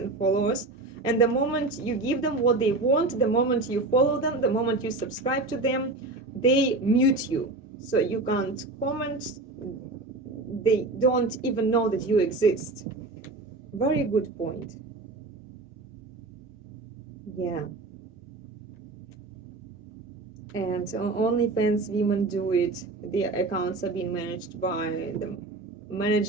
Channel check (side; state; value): left; quieter; 3.2 dB